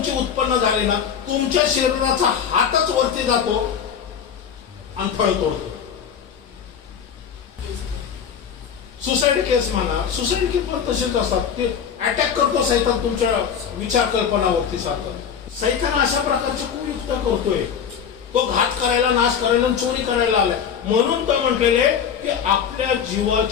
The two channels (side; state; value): right; quieter; 7.7 dB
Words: उत्पन्न झाली ना, तुमच्या शरीराचा हातच वरती जातो आणि फळ तोडतो. सुसाईड केस म्हणा, सुसाईड केस पण तसेच असतात, ते अटॅक करतो सैतान तुमच्या विचार कल्पनावरती सारखं. सैतान अशा प्रकारचे कुयुक्त करतोय, तो घात करायला, नाश करायला, चोरी करायला आलाय. म्हणून तर म्हटलेले की आपल्या